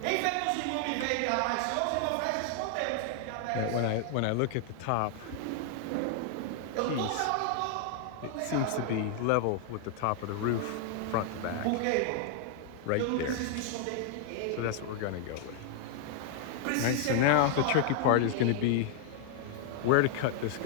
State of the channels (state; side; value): different; both; correlation 0.00